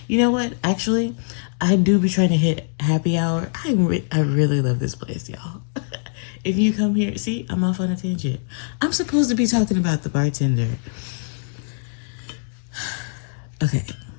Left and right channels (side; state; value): right; silent; digital silence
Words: You know what? Actually, I do be trying to hit happy hour. I really love this place, y'all. If you come here, see, I'm off on a tangent. I'm supposed to be talking about the bartender. Okay.